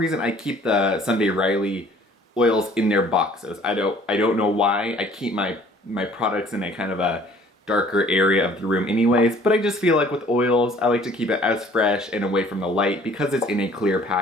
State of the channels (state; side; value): normal; both; correlation 0.55